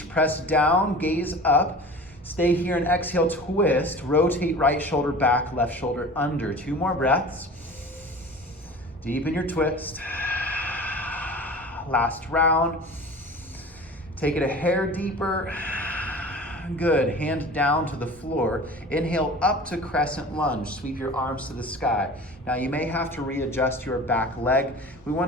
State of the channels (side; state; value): both; normal; correlation 0.38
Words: press down, gaze up. Stay here and exhale, twist. Rotate right shoulder back, left shoulder under. 2 more breaths. Deepen your twist. Last round. Take it a hair deeper. Good. Hand down to the floor. Inhale up to crescent lunge. Sweep your arms to the sky. Now you may have to readjust your back leg. We